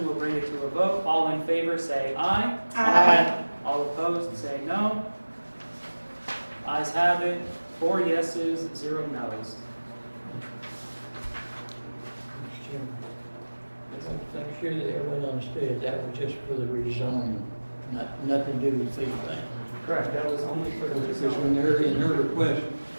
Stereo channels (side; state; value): both; inverted; correlation -1.00